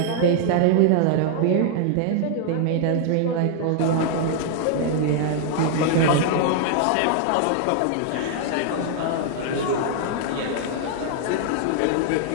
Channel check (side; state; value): both; different; correlation 0.00